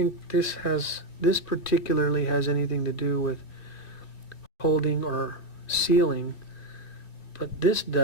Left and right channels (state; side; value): late; right; 2.4 ms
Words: this particularly has anything to do with holding or sealing, but this